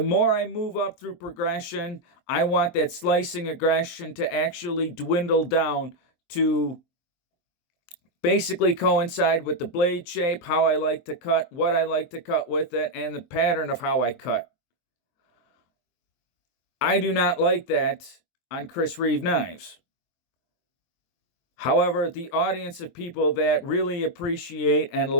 more I move up through progression, I want that slicing aggression to actually dwindle down to basically coincide with the blade shape, how I like to cut, what I like to cut with it, and the pattern of how I cut. I do not like that on Chris Reeve knives. However, the audience of people that really appreciate and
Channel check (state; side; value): late; right; 23 ms